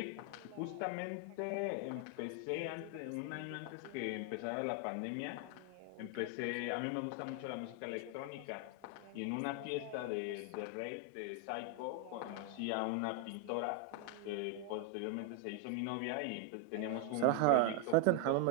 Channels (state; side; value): different; both; correlation 0.01